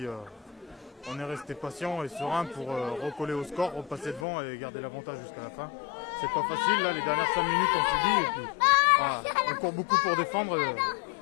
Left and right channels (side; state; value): right; drops out; at 4.2 s